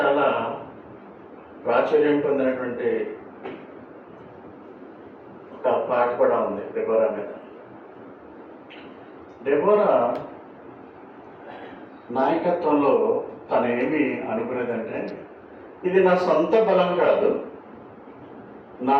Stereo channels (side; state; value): both; identical; correlation 1.00